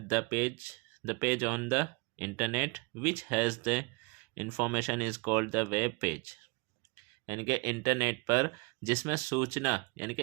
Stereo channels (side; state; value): left; quieter; 27.3 dB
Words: the page on the internet which has the information is called the web page. यानी कि इंटरनेट पर जिसमें सूचना यानी कि